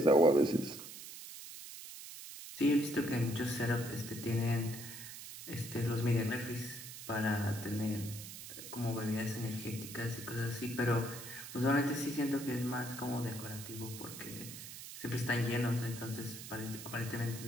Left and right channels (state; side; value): noise; right; hiss, 11 dB below the sound